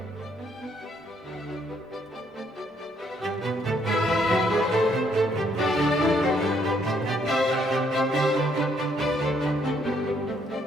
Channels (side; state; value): both; normal; correlation 0.70